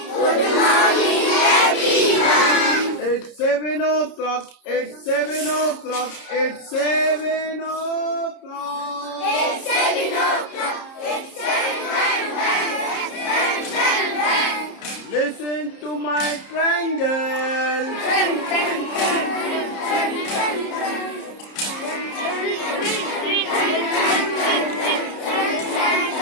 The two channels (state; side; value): late; right; 30 ms